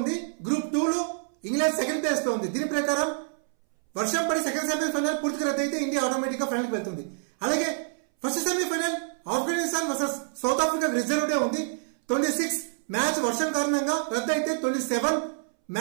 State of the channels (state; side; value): silent; left; 60 dB below the other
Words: గ్రూప్ 2 లో ఇంగ్లాండ్ సెకండ్ ప్లేస్ లో ఉంది. దీని ప్రకారం వర్షం పడి సెకండ్ సెమీఫైనల్ పూర్తిగా రద్దయితే ఇండియా ఆటోమేటిక్ గా ఫైనల్ కి వెళ్తుంది. అలాగే first semi-final Afghanistan versus south Africa reserve day ఉంది. 26 మ్యాచ్ వర్షం కారణంగా రద్దయితే 27